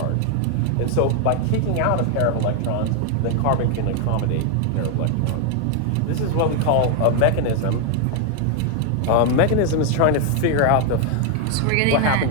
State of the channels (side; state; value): both; different; correlation 0.01